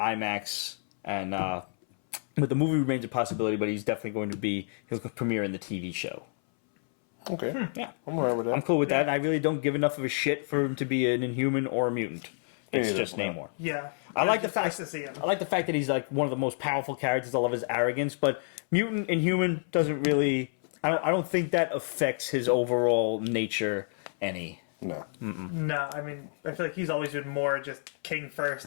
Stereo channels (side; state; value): right; silent; 59 dB below the other